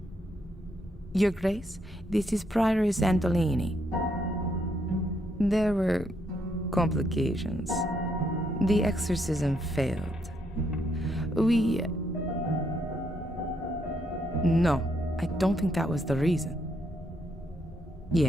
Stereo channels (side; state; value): both; normal; correlation 0.75